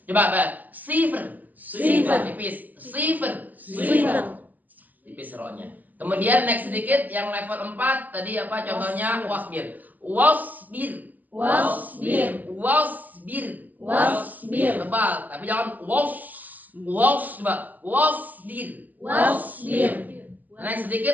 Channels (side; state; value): left; late; 0.083 ms